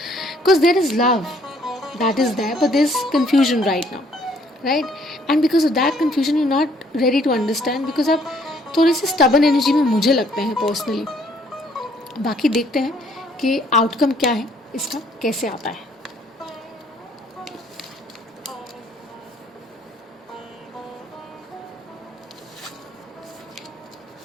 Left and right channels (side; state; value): both; normal; correlation 0.64